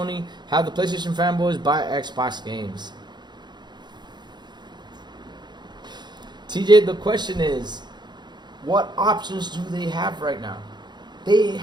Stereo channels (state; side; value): late; left; 0.21 ms